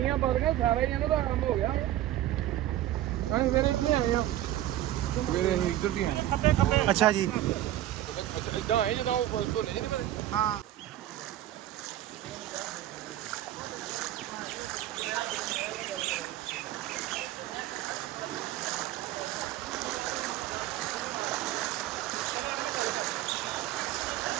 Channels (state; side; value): quieter; left; 13.6 dB